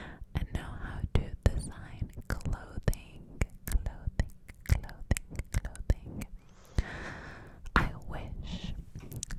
and know how to design clothing. I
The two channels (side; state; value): both; identical; correlation 1.00